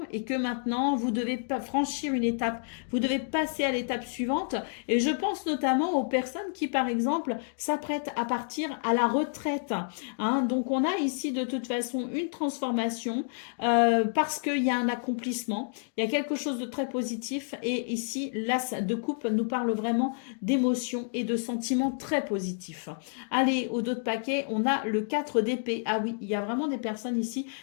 et que maintenant, vous devez pas franchir une étape. Vous devez passer à l'étape suivante. Et je pense notamment aux personnes qui, par exemple, s'apprêtent à partir à la retraite. Hein. Donc, on a ici de toute façon une transformation parce qu'il y a un accomplissement. Il y a quelque chose de très positif. Et ici, l'as de coupe nous parle vraiment d'émotions et de sentiments très positifs. Allez, au dos de paquet, on a le 4 d'épée. Ah oui, il y a vraiment des personnes ici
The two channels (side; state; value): right; silent; digital silence